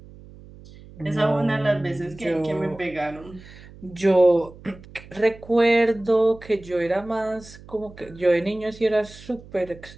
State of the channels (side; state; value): right; noise; hum, 20 dB below the sound